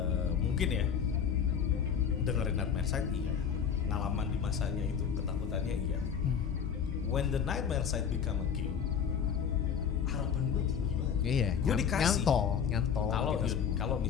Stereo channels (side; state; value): right; quieter; 7.4 dB